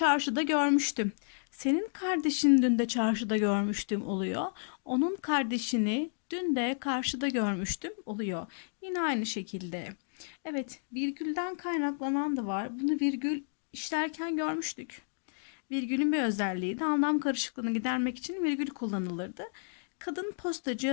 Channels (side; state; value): right; silent; digital silence